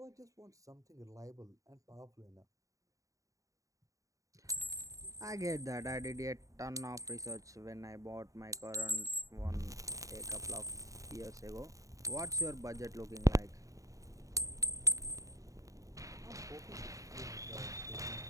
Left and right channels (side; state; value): left; late; 0.16 ms